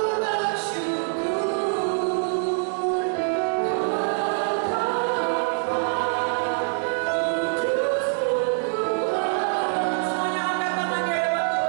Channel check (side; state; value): left; silent; digital silence